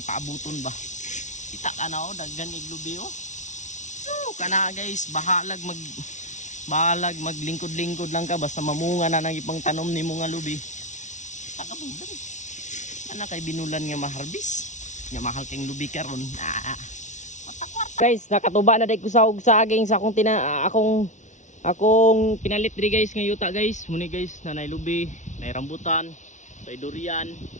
paabuton ba? Kita ka na daghan iglubi So kana guys, bahalag maglingkod-lingkod lang ka basta mamunga na nang ipang tanom ni mga lubi. Takabugan. Ana kay binulan nga maharbis. Nya mahal kang lubi karon. Matakwar. Guys, nakatuba na day ko sa saging sa akong pinalit diri guys nga yuta guys. Muni guys, nanay lubi, nay rambutan, nay durian,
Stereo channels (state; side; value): late; right; 0.36 ms